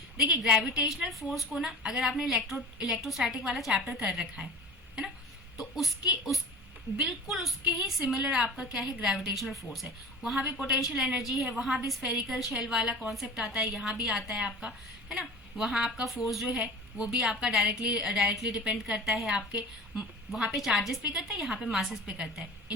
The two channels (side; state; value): both; normal; correlation 0.37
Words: देखिए ग्रेविटेशनल फोर्स को ना, अगर आपने इलेक्ट्रोस्टैटिक वाला चैप्टर कर रखा है ना, तो बिल्कुल उसके ही सिमिलर आपका क्या है, ग्रेविटेशनल फोर्स है। वहां भी पोटेंशियल एनर्जी है, वहां भी स्फेरिकल शेल वाला कॉन्सेप्ट आता है, यहाँ भी आता है आपका, है ना। वहां आपका फोर्स जो है वो भी आपका डायरेक्टली डिपेंड करता है आपके, वहां पे चार्जेस पे करता है, यहाँ पे मासेस पे करता है।